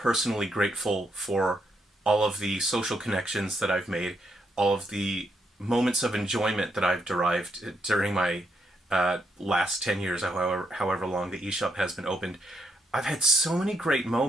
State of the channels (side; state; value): both; normal; correlation 0.78